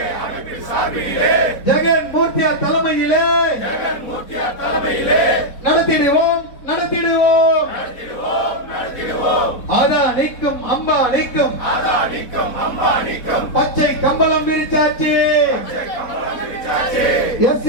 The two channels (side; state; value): right; late; 4.1 ms